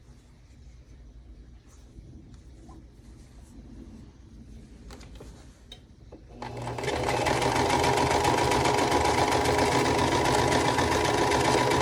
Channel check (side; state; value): both; identical; correlation 1.00